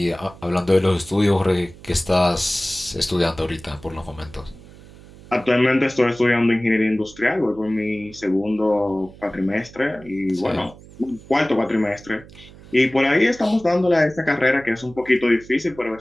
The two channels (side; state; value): right; noise; hum, 21 dB below the sound